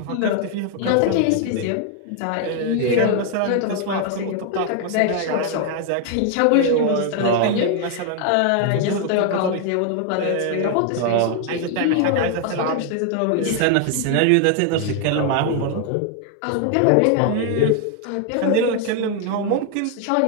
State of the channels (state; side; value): different; both; correlation 0.00